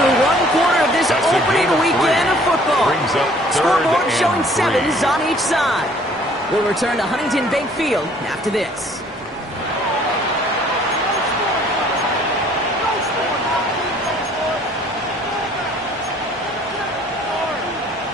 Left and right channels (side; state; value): both; normal; correlation 0.57